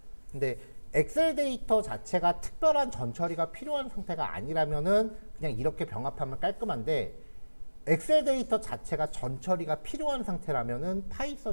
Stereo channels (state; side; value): inverted; both; correlation -1.00